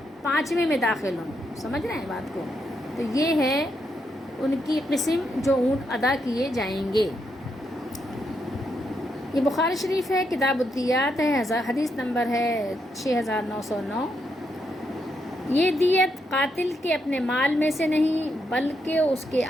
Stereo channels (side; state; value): both; normal; correlation 0.80